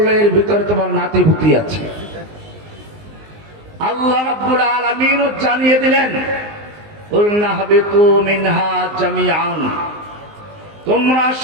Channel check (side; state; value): left; late; 19 ms